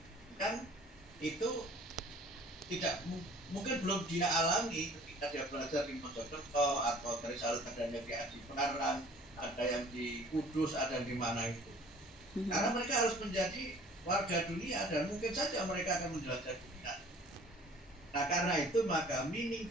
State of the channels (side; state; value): both; normal; correlation 0.51